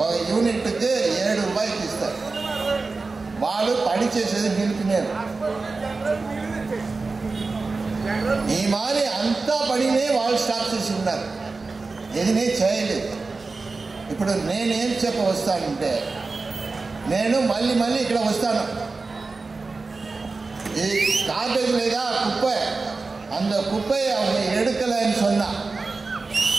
ఒక యూనిట్కి ₹7 ఇస్తారు. వాళ్ళు పని చేసేది నిలిపినారు. ఈ మారి అంతా పనినే వాళ్ళు స్టాప్ చేసి ఉన్నారు, ఏదినే చేయలేదు. ఇప్పుడు నేనేం చెప్ప వస్తానంటే, నేను మళ్ళీ ఇక్కడ వస్తాను. ఈ காப்பேஜ் లేదా குப்பை, அந்த குப்பையை அவங்க எடுக்கலைன்னு சொன்னா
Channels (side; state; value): left; quieter; 3.9 dB